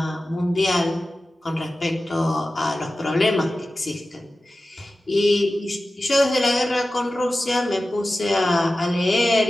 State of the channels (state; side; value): normal; both; correlation 0.94